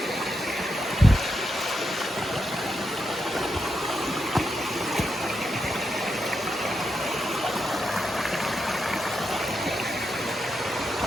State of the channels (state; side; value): normal; both; correlation 0.85